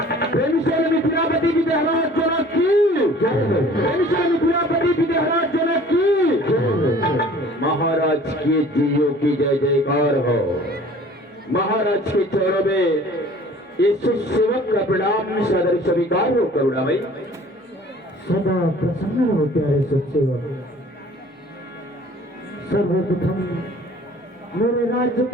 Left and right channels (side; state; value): both; normal; correlation 0.49